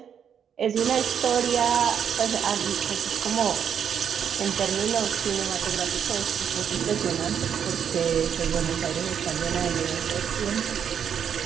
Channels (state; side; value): quieter; left; 8.2 dB